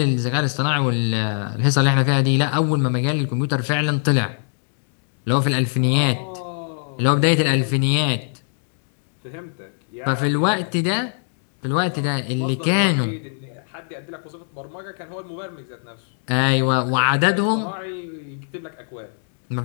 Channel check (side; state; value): right; silent; digital silence